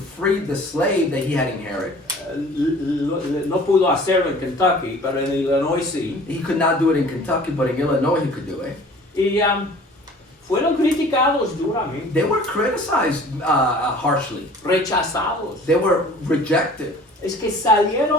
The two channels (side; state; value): both; normal; correlation 0.48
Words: the slave that he had inherited. No pudo hacerlo en Kentucky, pero en Illinois sí. He could not do it in Kentucky, but in Illinois he could do it. Y fueron criticados duramente, They were criticized harshly. rechazados. They were rejected. Es que